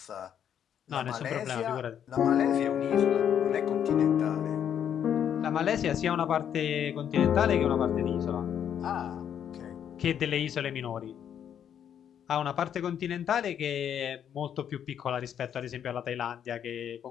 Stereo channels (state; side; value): quieter; right; 9.1 dB